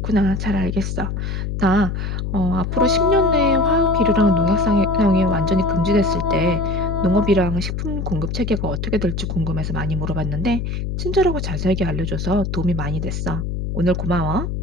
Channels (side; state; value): left; noise; hum, 3 dB below the sound